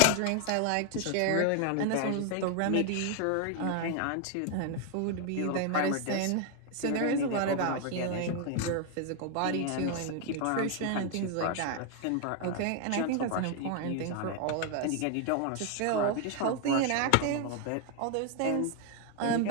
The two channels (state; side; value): different; both; correlation 0.01